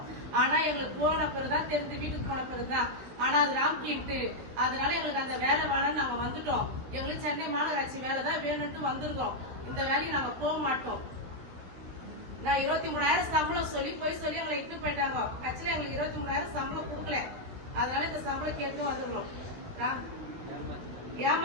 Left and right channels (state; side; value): late; left; 16 ms